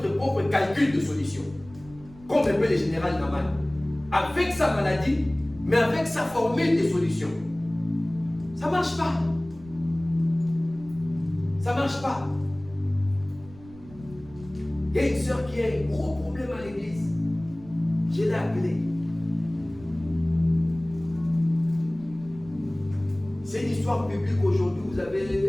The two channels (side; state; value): right; noise; rumble, 20 dB below the sound